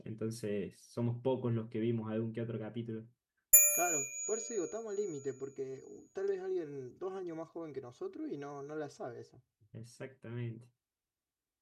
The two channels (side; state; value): both; identical; correlation 1.00